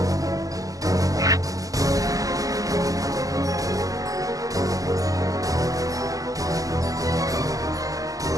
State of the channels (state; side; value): late; left; 0.17 ms